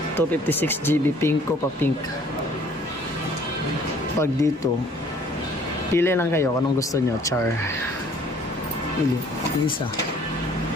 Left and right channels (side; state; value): both; normal; correlation 0.56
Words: 256GB pinko pa pink. Pag dito pili lang kayo kung anong gusto nyo. Char pili isa